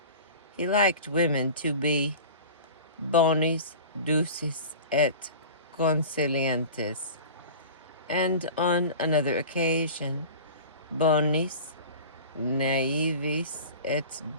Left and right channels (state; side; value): inverted; both; correlation -0.37